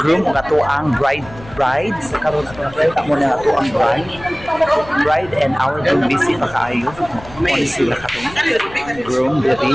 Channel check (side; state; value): left; noise; rumble, 18 dB below the sound